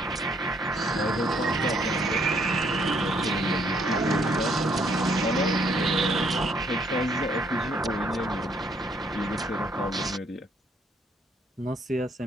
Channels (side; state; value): both; normal; correlation 0.68